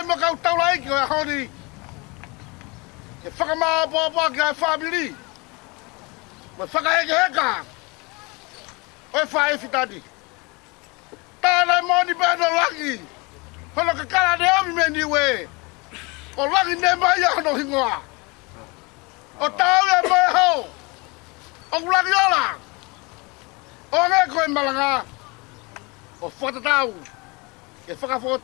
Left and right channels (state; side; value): quieter; right; 27.5 dB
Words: mo kau taula iki o e honi. E whakamaa pōpā ki ai whamiri. Mo whakaheke heka. O e whae whitani. Tānei moni bēno laki. Hono ka kara ne omi me niwe. O laki ne mai hono hingoa. O tau e mai hau. O laki ola. O nge koe malanga. O whatatau. E